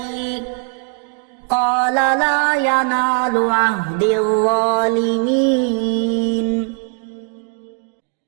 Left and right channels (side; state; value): left; quieter; 39.9 dB